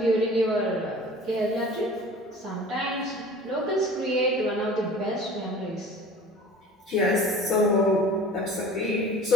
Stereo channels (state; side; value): normal; both; correlation 0.43